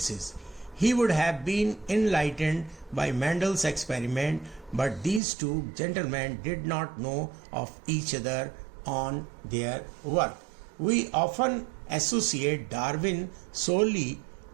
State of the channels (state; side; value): drops out; left; at 5.2 s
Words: He would have been enlightened by Mendel's experiment, but these two gentlemen did not know of each other on their work. We often associate Darwin solely